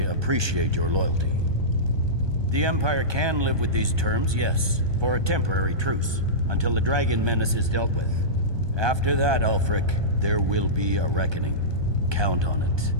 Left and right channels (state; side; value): late; left; 1.2 ms